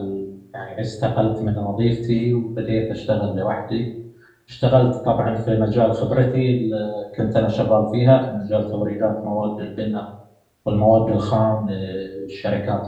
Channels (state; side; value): identical; both; correlation 1.00